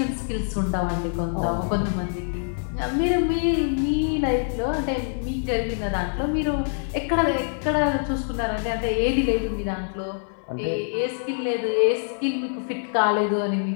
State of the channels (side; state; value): right; silent; digital silence